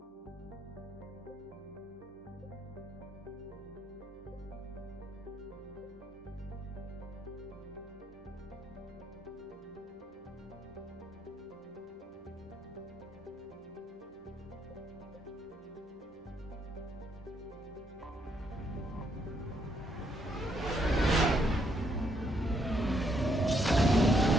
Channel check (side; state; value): both; normal; correlation 0.74